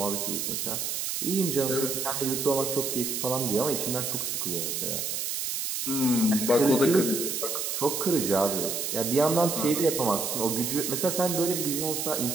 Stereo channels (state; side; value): noise; right; hiss, 2 dB below the sound